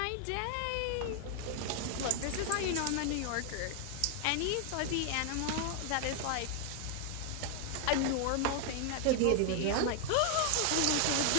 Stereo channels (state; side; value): different; both; correlation 0.00